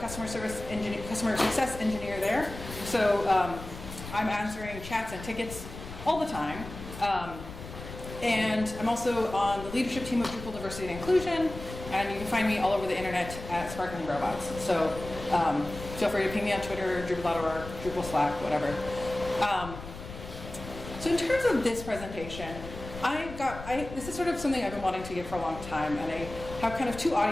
success engineer there. So I'm answering chats and tickets all the time. And I'm also on the leadership team of Drupal Diversity and Inclusion, and you can find me all over the internet at sparklingrobots. So feel free to ping me on Twitter, Drupal.org, Drupal Slack, whatever. So in terms of this presentation, this is sort of something I've been wanting to give for a long time, and I have kind of two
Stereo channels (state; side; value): noise; left; rumble, 12 dB below the sound